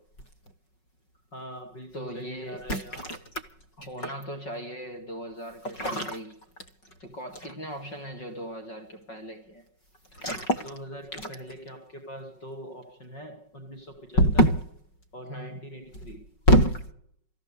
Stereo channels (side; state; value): right; late; 5.4 ms